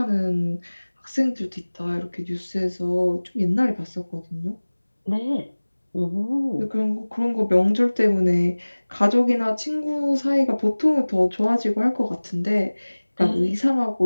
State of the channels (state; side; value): inverted; both; correlation -1.00